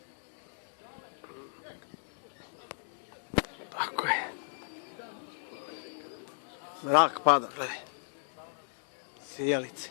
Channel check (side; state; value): right; silent; digital silence